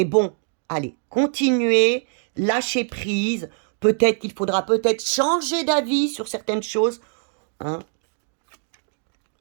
bon, allez, continuez, lâchez prise. Peut-être qu'il faudra changer d'avis sur certaines choses. Hein.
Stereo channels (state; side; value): silent; left; digital silence